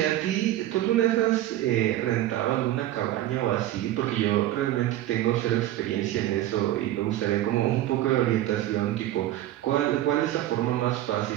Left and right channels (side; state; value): left; quieter; 14.0 dB